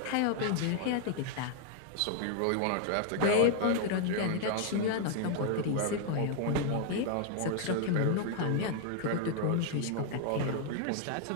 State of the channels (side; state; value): both; different; correlation 0.00